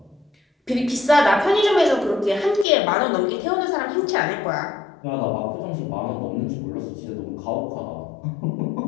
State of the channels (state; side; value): drops out; right; at 2.7 s